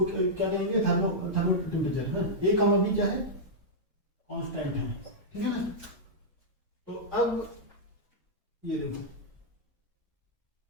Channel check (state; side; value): normal; both; correlation -0.09